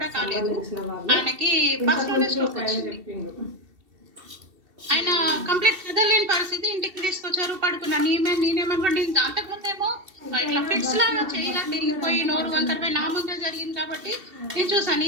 కాలేదు ఆయనకి ఫస్ట్ లోనే స్ట్రోక్ వచ్చింది. ఆయన కంప్లీట్ కదలేని పరిస్థితి, ఇంటికి తీసుకొచ్చారు, పడుకున్నా. నేనేమనుకోండి అంతకుముందేమో ఇట్లా ఫిట్స్ లాగా చేయగా తిరిగిపోయి నోరు వంకరపై నా ముందే జరిగింది కాబట్టి నేను చూసాను.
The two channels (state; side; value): late; left; 2.7 ms